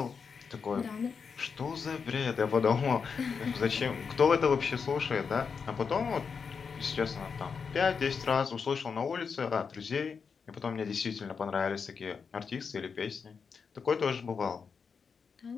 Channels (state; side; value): quieter; right; 5.8 dB